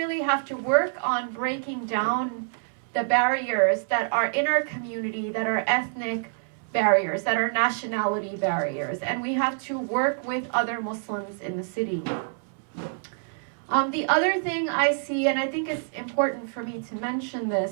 have to work on breaking down the barriers that are in our community, that are ethnic barriers, that are nationality barriers. And we have to work with other Muslims in the city. The other thing I see, and I think it's important for me to mention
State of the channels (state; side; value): silent; left; 61 dB below the other